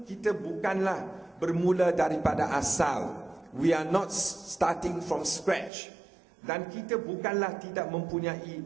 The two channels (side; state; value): left; drops out; at 5.7 s